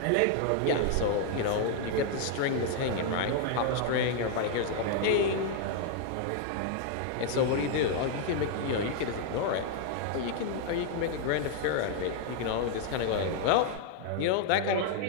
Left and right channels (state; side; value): different; both; correlation 0.00